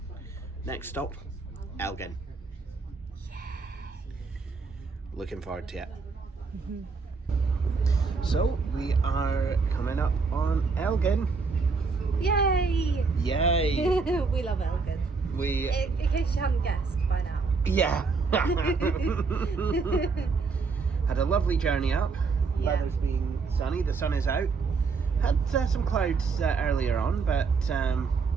Next stop, Elgin. Looking forward to it. So we are coming up on Elgin. Yay! Yay! We love Elgin. In case you hadn't guessed by now. Yeah. Had a lovely journey up. Yeah. Weather's been sunny. The sun is out. Had some clouds earlier on, but yeah,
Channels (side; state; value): left; quieter; 4.6 dB